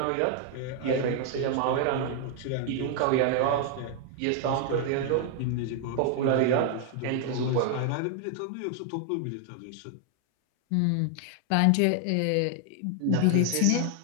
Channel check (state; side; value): different; both; correlation 0.00